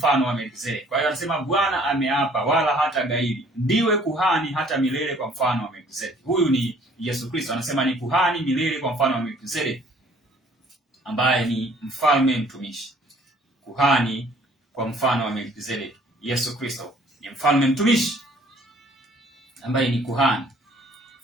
wa Melkizedeki. Kwa hiyo anasema Bwana ameapa wala hata gairi, ndiwe kuhani hata milele kwa mfano wa Melkizedeki. Huyu ni Yesu Kristo, anasema ni kuhani milele kwa mfano wa Melkizedeki, ambaye ni mfalme mtumishi. Kuhani kwa mfano wa Melkizedeki. Yesu Kristo ni mfalme mtumishi ambaye ni kuhani,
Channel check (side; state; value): both; normal; correlation 0.58